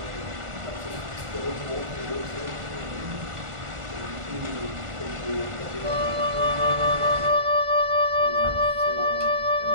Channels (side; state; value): left; late; 1.4 ms